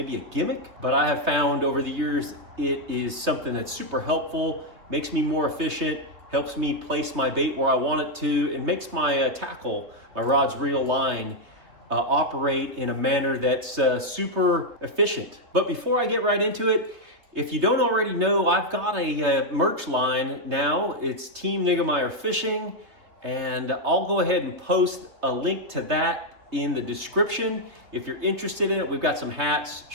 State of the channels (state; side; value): late; left; 3.1 ms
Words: a gimmick, but I have found over the years it is something that's super helpful, makes me more efficient, helps me place my bait where I want it to, and makes my tackle, my rod's reel line, operate in a manner that's super efficient. But before I get right into it, if you don't already know, I've got a merch line now. It's Team Niggemeyer Fishing, and I'll go ahead and post a link to that in the description. If you're interested in it, we've got some hats,